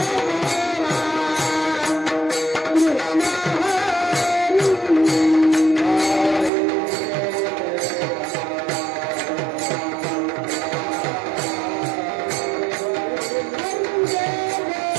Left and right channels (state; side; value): drops out; left; at 6.5 s